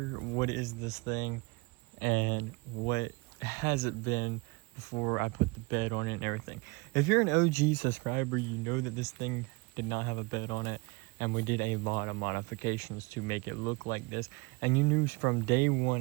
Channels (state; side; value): quieter; left; 27.1 dB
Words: What is this thing? And what has it been before I put the bed on it and everything? If you're an OG subscriber, you know that this thing did not have a bed on it. And we did a lot of modifications to make it look like this. And you knew from day